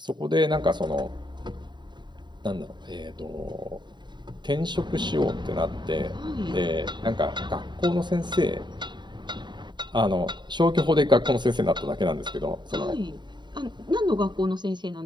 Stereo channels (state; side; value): late; left; 0.22 ms